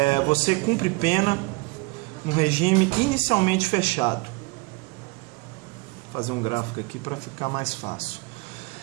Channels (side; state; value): left; quieter; 26.0 dB